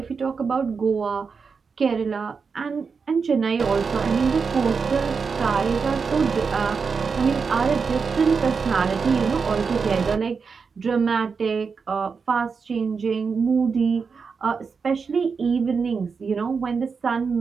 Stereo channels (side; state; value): left; quieter; 5.4 dB